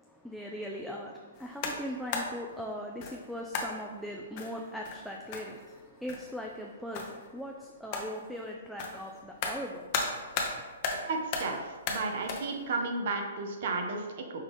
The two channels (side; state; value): both; normal; correlation -0.20